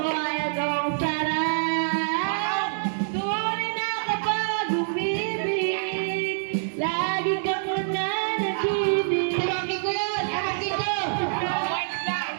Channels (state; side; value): silent; left; 61 dB below the other